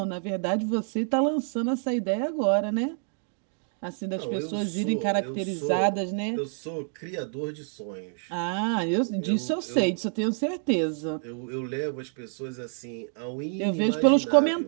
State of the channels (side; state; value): left; silent; 60 dB below the other